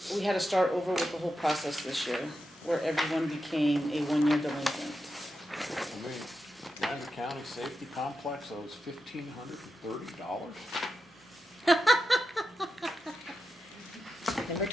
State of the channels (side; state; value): both; normal; correlation 0.88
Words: we had to start over with the whole process this year, where everyone became a one-year delinquent. Lander County Safety Complex owes $1,530. Number